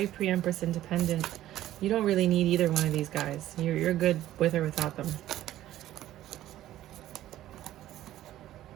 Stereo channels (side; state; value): left; quieter; 13.7 dB